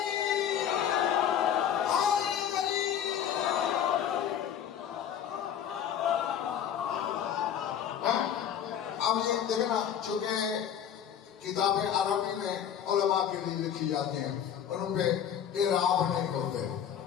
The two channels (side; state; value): right; quieter; 9.2 dB